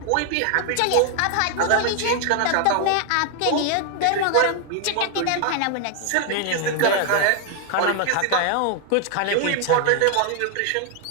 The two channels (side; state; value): both; different; correlation 0.00